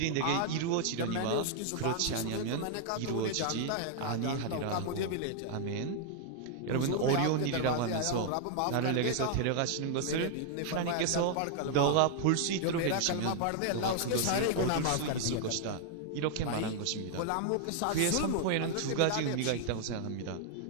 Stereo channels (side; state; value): both; different; correlation 0.00